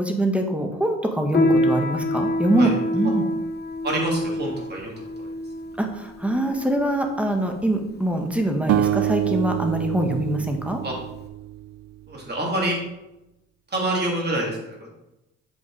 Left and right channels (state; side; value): normal; both; correlation 0.58